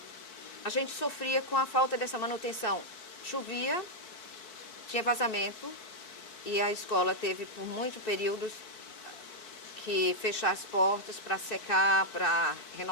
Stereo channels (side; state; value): right; late; 4.6 ms